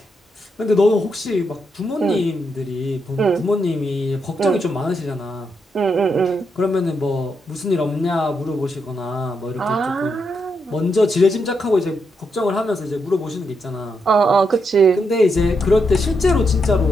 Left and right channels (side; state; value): both; normal; correlation 0.81